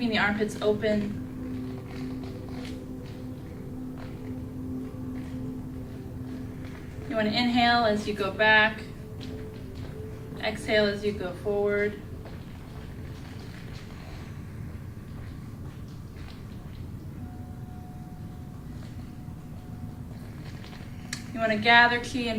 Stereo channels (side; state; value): both; identical; correlation 1.00